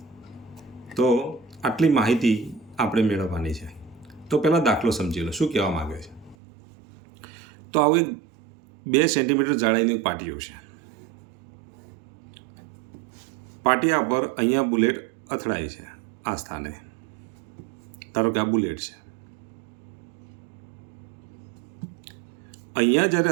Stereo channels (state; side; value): drops out; left; at 6.4 s